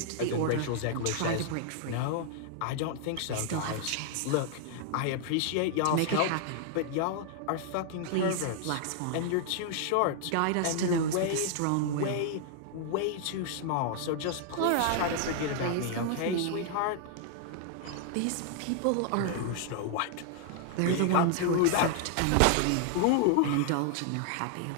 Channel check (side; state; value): both; different; correlation 0.00